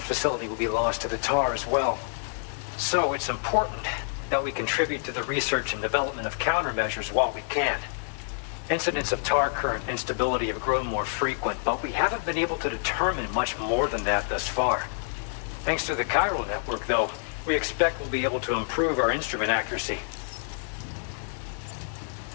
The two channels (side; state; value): right; silent; digital silence